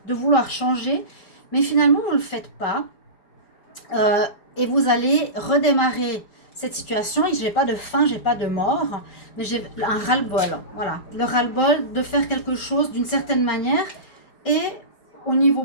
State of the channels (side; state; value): right; late; 4.9 ms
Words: de vouloir changer, mais finalement vous ne le faites pas. Et vous allez redémarrer cette situation. Je n'ai pas de fin, je n'ai pas de mort, mais j'ai un ras-le-bol. Voilà, le ras-le-bol de faire quelque chose d'une certaine manière. Et au niveau